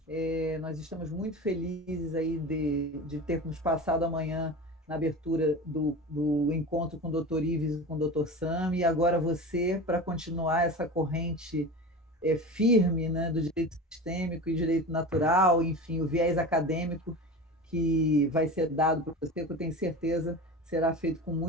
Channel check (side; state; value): both; normal; correlation 0.30